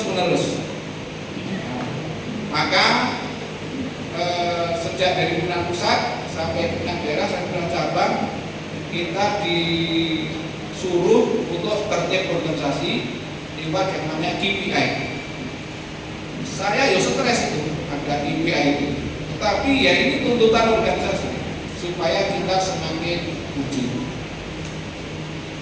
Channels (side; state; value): both; identical; correlation 1.00